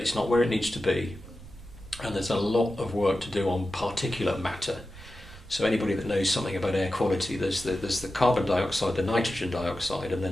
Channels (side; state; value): right; noise; rumble, 18 dB below the sound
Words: not where it needs to be, and there's a lot of work to do on particulate matter. So anybody that knows something about air quality, there's the carbon dioxide, the nitrogen dioxide, and